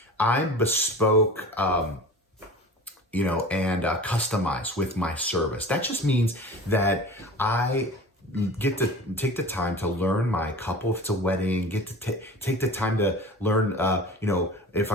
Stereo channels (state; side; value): normal; both; correlation 0.38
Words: I'm bespoke, and customized with my service. That just means that I get to take the time to learn my couple, if it's a wedding, get to take the time to learn, if